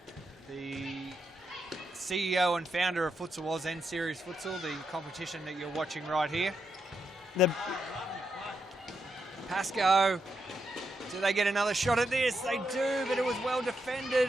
CEO and founder of Futsal Oz and Series Futsal, the competition that you're watching right here. Pascoe, do they get another shot at this? They do, but it was well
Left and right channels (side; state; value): both; normal; correlation 0.82